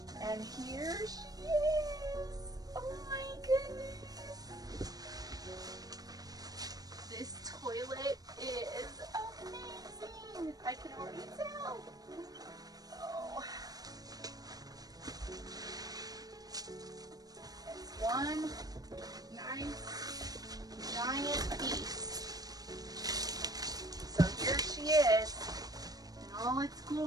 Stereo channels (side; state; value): left; late; 0.18 ms